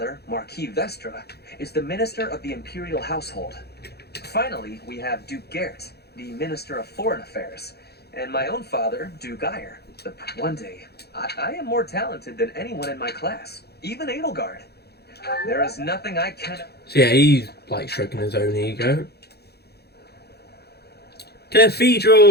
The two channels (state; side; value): late; right; 0.47 ms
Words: Marquis Vestra, is the Minister of the Imperial Household. Finally, we have Duke Gert, the Minister of Foreign Affairs, and my own father, Duke Geyer. But one day, I am more talented than anyone in my class, even Edelgard. There is nothing I cannot... So yeah, he's like stroking his own ego.